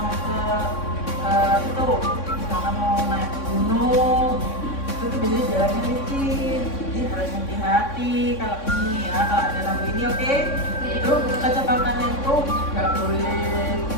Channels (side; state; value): right; late; 3.6 ms